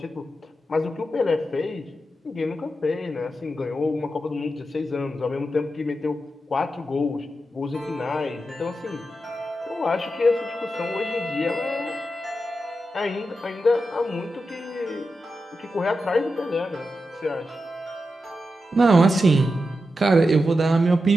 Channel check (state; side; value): normal; both; correlation 0.89